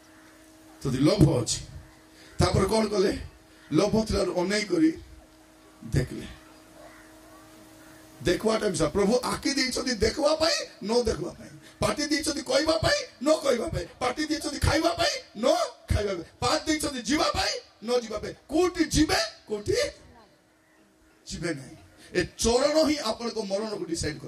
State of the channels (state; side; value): identical; both; correlation 1.00